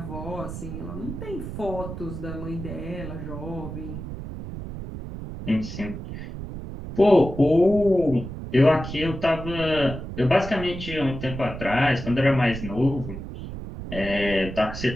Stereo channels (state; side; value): noise; right; rumble, 9 dB below the sound